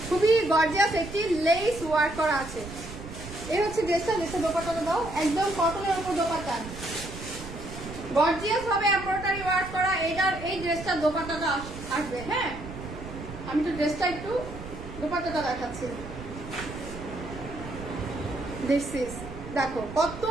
খুবই গর্জিয়াস একটি লেস ওয়ার্ক করা আছে। এই হচ্ছে ড্রেসটা। ড্রেসের দোপাট্টাটা দাও, একদম কটনের উপর দোপাট্টা, গর্জিয়াস ভাবে এমব্রয়ডারি ওয়ার্ক করা। এই ড্রেসটার দোপাট্টাটা আসবে। হ্যাঁ, আমি তো ড্রেসটা একটু দোপাট্টাটা দেখাচ্ছি। দিস ইজ, দেখো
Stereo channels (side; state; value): right; noise; rumble, 12 dB below the sound